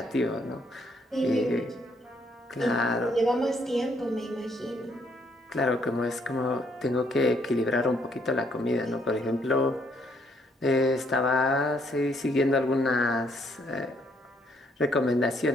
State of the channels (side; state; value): both; normal; correlation 0.70